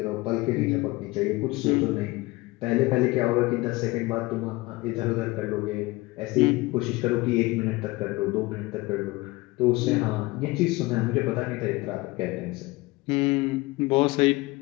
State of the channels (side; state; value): right; quieter; 21.8 dB